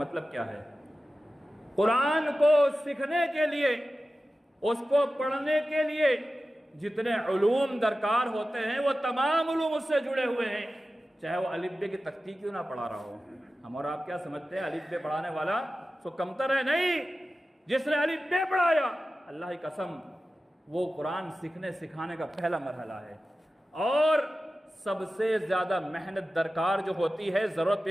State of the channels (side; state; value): both; normal; correlation 0.94